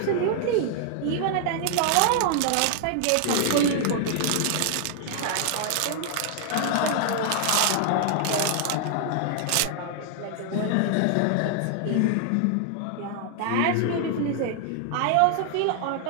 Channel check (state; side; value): different; both; correlation 0.00